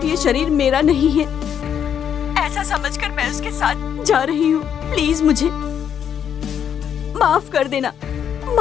ये शरीर मेरा नहीं है ऐसा समझकर मैं उसके साथ जा रही हूँ। प्लीज मुझे माफ कर देना,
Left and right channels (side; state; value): right; quieter; 8.6 dB